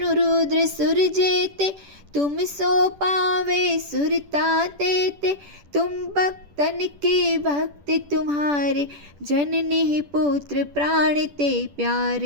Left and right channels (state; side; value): late; left; 10 ms